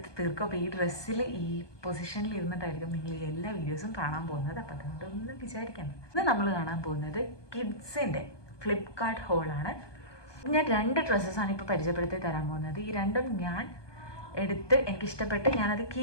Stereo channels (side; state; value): right; late; 1.2 ms